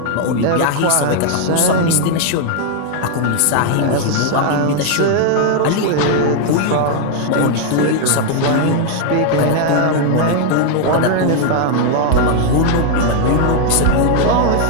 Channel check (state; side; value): different; both; correlation 0.00